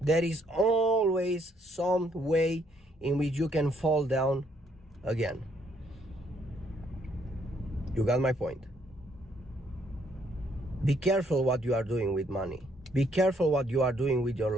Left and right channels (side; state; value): both; normal; correlation 0.69